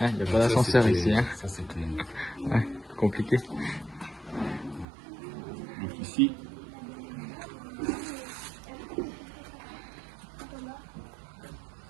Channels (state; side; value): drops out; left; at 4.9 s